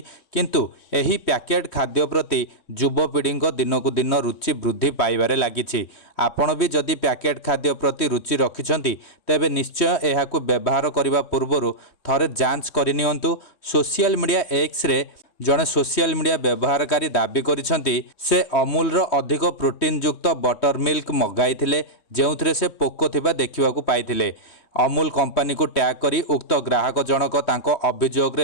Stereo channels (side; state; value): right; late; 3.1 ms